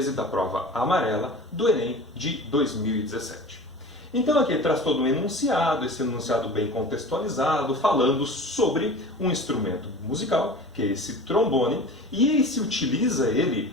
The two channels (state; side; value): normal; both; correlation 0.37